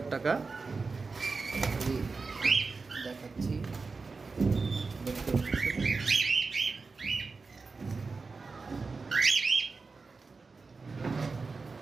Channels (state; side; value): quieter; left; 4.3 dB